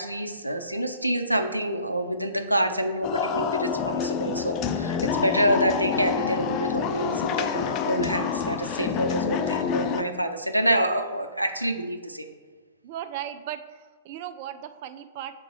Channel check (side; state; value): both; inverted; correlation -0.49